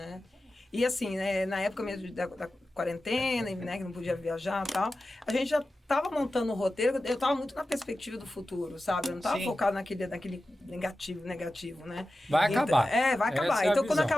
E assim, né, na época mesmo da quarentena, né, que não podia viajar e tal, a gente já estava montando o roteiro, eu estava muito na perspectiva do futuro, sabe? Eu não estava focado naquele negativo, né? Vai acabar. Vai acabar. Então, quando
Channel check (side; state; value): both; normal; correlation 0.93